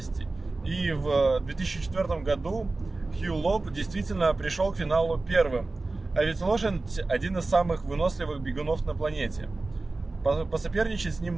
И в 2004 году Хью Лоб действительно пришел к финалу первым. А ведь лошадь один из самых выносливых бегунов на планете. Посоперничать с ним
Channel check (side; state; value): left; quieter; 3.3 dB